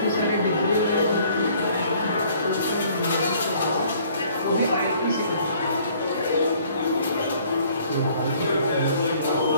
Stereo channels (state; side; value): inverted; both; correlation -0.58